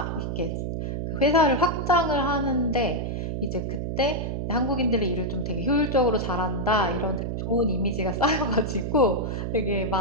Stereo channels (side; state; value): right; noise; hum, 3 dB below the sound